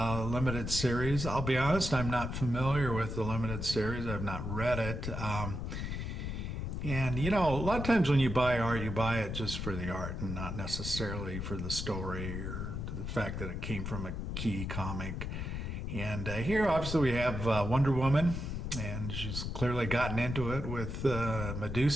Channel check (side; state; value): left; noise; rumble, 4 dB below the sound